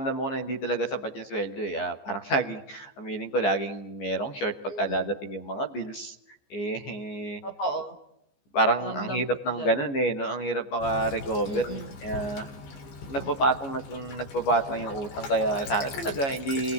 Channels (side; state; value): right; late; 15 ms